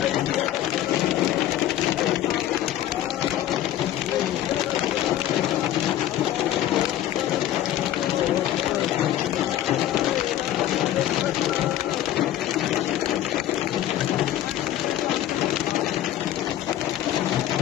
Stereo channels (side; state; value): right; quieter; 12.5 dB